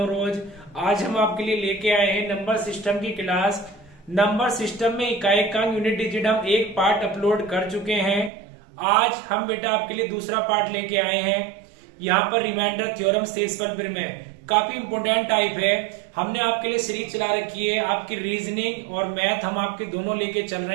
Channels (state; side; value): drops out; left; at 8.3 s